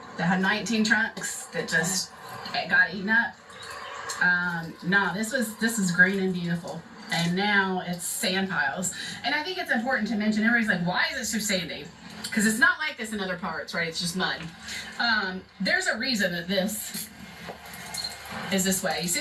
that had 19 trunks that just got eaten up. No, this is green and beautiful. And now it's sand piles. And I think it's important to mention, everybody's like, why is it so sandy? Because it's not like this in other parts, right? It's just mud. There's a reason that this is this way. You see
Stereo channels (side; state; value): both; identical; correlation 1.00